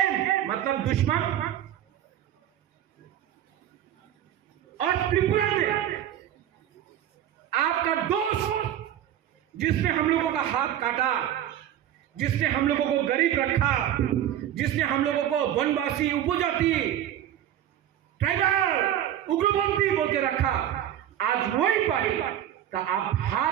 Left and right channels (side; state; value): left; quieter; 11.2 dB